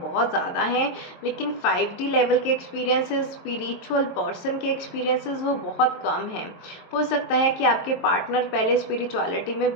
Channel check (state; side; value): late; right; 23 ms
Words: ज़्यादा हैं लेकिन 5D लेवल के एक्सपीरियंसेस, स्पिरिचुअल पर्सन के एक्सपीरियंसेस वो बहुत कम हैं। हो सकता है कि आपके पार्टनर पहले स्पिरिचुअलिटी में